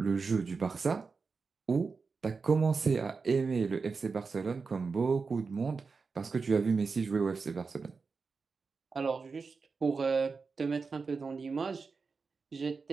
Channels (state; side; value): quieter; left; 4.7 dB